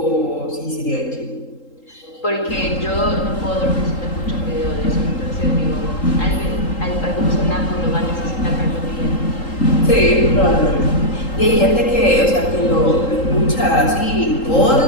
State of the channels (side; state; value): right; late; 3.8 ms